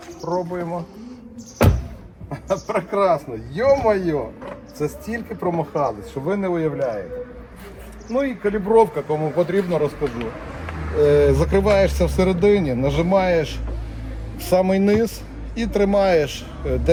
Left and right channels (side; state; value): both; identical; correlation 1.00